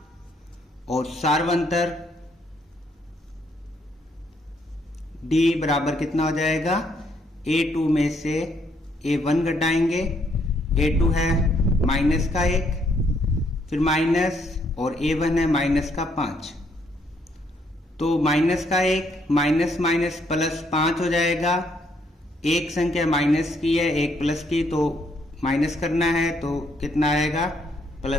और सार्वंतर डी बराबर कितना हो जाएगा, A2 में से A1 घटाएंगे। A2 है -1, फिर माइनस और A1 है -5। तो -1 माइनस माइनस प्लस 5 हो जाएगा। एक संख्या माइनस की है, एक प्लस की, तो माइनस करना है तो कितना आएगा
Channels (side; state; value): both; normal; correlation 0.71